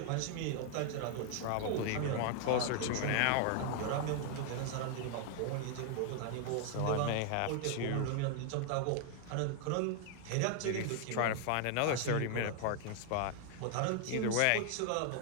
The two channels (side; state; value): both; different; correlation 0.00